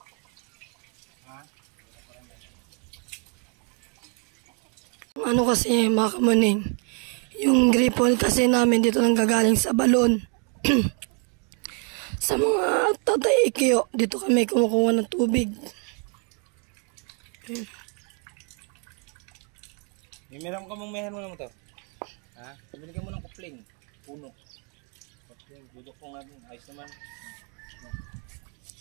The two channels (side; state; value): left; quieter; 37.9 dB